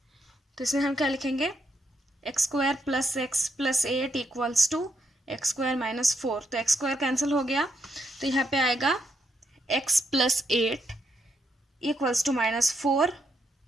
तो इसमें हम क्या लिखेंगे, x² plus x plus 8 equals to x² minus 4। तो x² कैंसिल हो गया, तो यहाँ पे आएगा x plus 8 equals to minus 4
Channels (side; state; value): both; normal; correlation 0.79